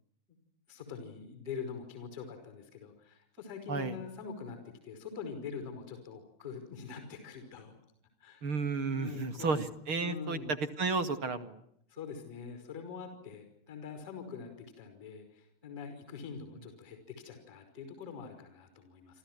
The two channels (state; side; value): late; left; 6.5 ms